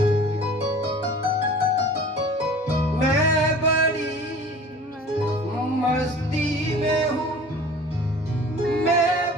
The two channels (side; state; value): both; normal; correlation 0.44